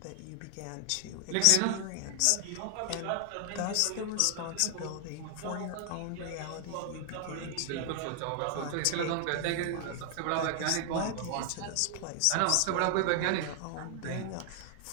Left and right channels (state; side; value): different; both; correlation 0.00